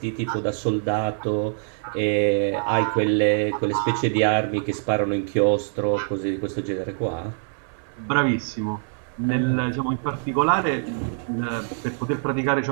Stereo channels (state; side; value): silent; left; 62 dB below the other